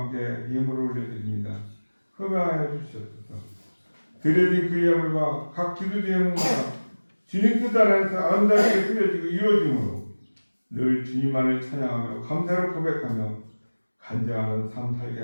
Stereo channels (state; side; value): inverted; both; correlation -1.00